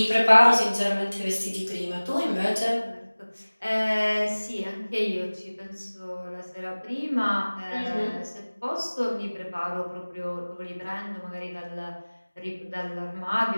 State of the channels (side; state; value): both; inverted; correlation -1.00